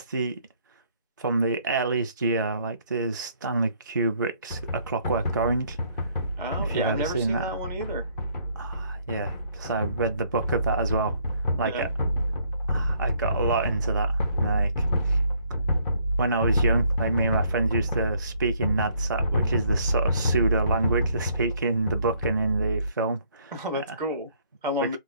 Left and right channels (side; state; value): both; inverted; correlation -0.66